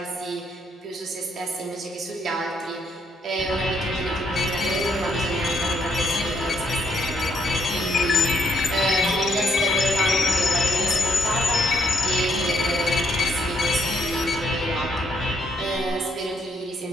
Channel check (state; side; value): normal; both; correlation 0.71